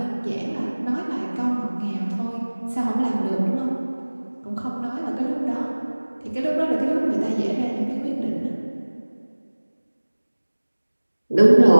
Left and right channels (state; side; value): inverted; both; correlation -1.00